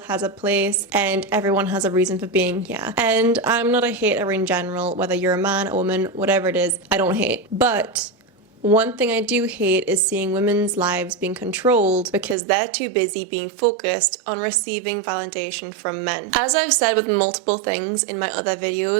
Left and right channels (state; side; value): drops out; left; at 12.4 s